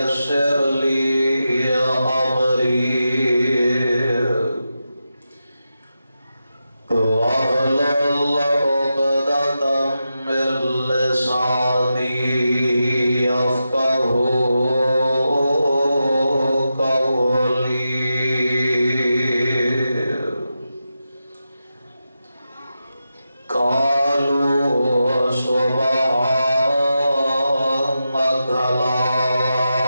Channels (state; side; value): inverted; both; correlation -0.89